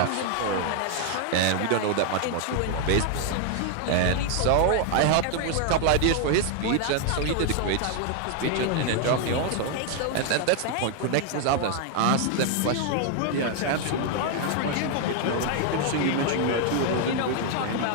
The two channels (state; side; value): different; both; correlation 0.00